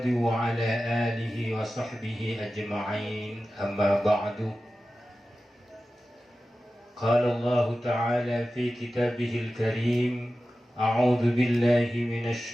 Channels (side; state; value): both; normal; correlation 0.94